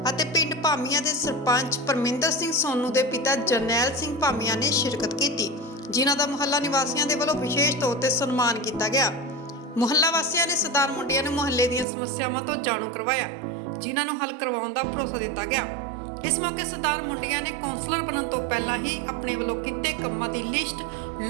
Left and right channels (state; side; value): drops out; left; at 11.9 s